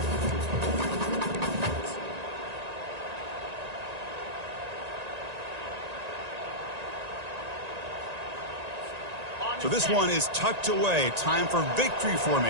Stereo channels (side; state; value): left; late; 1.9 ms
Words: So this one is tucked away. Time for victory